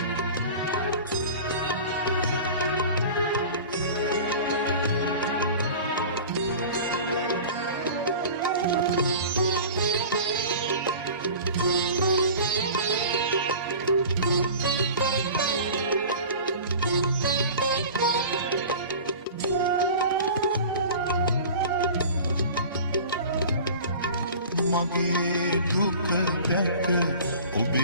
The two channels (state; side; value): inverted; both; correlation -0.39